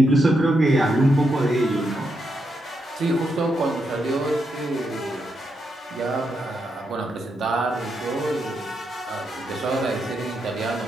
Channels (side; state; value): both; normal; correlation 0.82